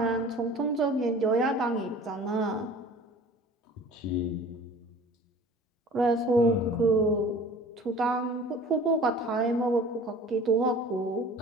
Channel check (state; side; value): normal; both; correlation 0.45